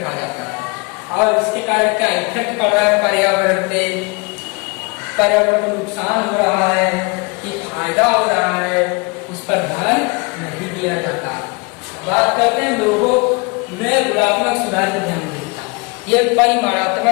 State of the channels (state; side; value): quieter; right; 30.7 dB